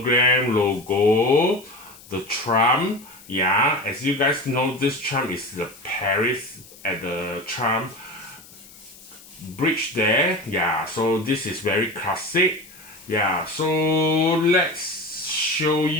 logo, the Trump. Yeah, as you guys know, this Trump is the Paris at the Trump bridge there. Yeah, so this is very classic. Yeah, so let's show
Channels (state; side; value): noise; left; hiss, 21 dB below the sound